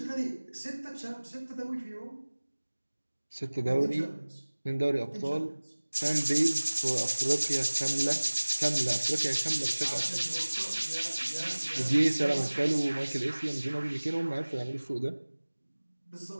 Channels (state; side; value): inverted; both; correlation -1.00